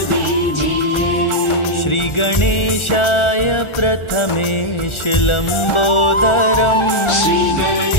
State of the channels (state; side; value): late; right; 1.4 ms